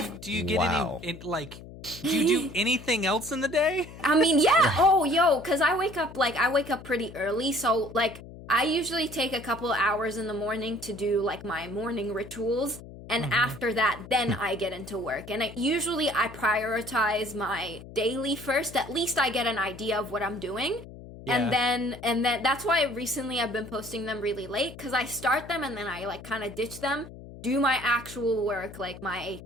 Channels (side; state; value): left; noise; hum, 15 dB below the sound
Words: get any like? Do you do anything else in the day? I mean, yeah. Oh, because I wake up pretty early, so like. I usually take a couple hours in the morning to do like my morning rituals, and after that, then I get into work. And usually I prioritize my daily first. At least I get an idea of what I'm doing, and then that's why recently I've been posting them really late, because I start them and then I like kind of ditch them, do my actual work, like my